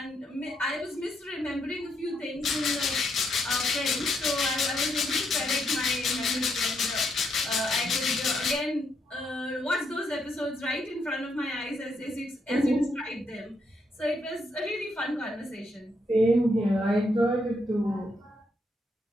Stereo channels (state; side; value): normal; both; correlation 0.77